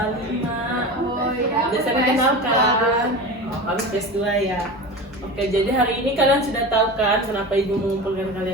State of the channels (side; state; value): both; normal; correlation 0.29